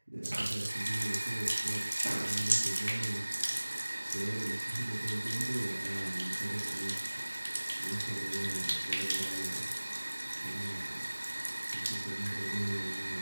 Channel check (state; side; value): inverted; both; correlation -1.00